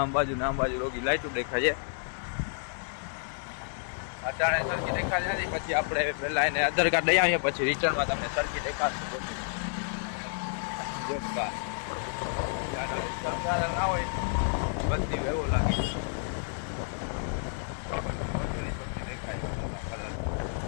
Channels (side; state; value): right; silent; digital silence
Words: બાજુ ને આમ બાજુ રોગી લાઇટો દેખાય છે. અટાણે સરખી દેખાતી નથી. પછી આપણે પહેલાં એને આધાર કાર્ડ લઈ આવીએ પછી રિટર્નમાં તમને સરખી દેખાડશે બોટું. જોરદાર શણગાર ના હોય બધી એવો લાગે. બધી બોટોની બધી દેખાય કલર.